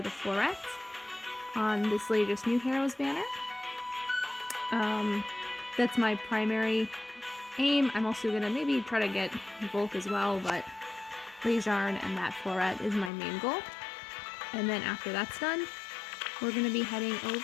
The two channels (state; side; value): drops out; right; at 13.1 s